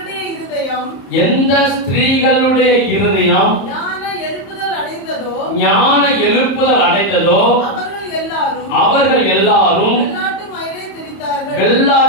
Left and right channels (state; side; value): late; right; 31 ms